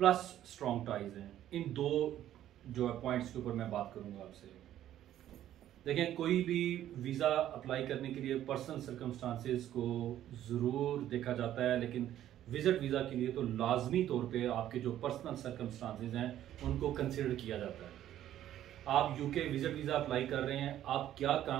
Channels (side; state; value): left; quieter; 12.1 dB